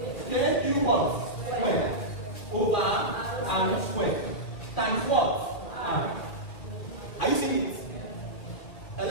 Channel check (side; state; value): right; late; 2.1 ms